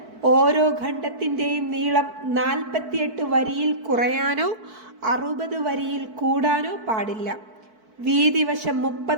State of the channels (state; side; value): late; left; 4.5 ms